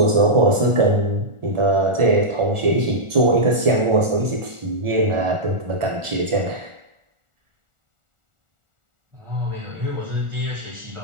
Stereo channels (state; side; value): late; left; 1.4 ms